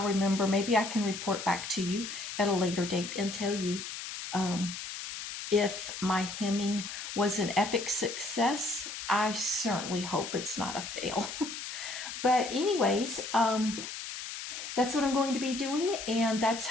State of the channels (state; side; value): noise; left; hiss, 8 dB below the sound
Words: remember. Maybe I can report back to you at a later date and tell you um, if my hemming was an epic success. I certainly hope it's not a fail. But anyways, that's what I'm going to be doing, and that's